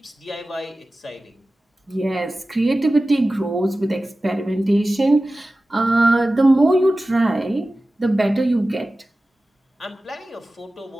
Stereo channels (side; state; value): both; normal; correlation 0.96